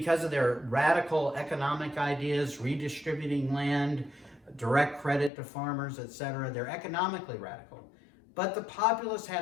of their radical economic ideas, redistributing land, direct credit to farmers, etc. They're economically radical. But the populists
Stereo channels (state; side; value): drops out; right; at 5.3 s